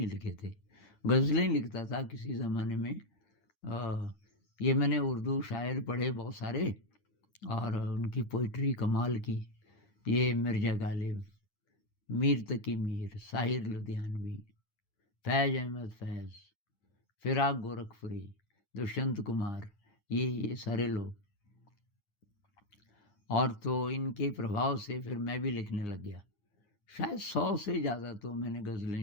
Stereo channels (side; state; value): right; late; 9.8 ms